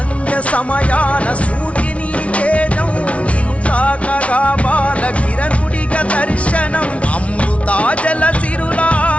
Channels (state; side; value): late; right; 0.063 ms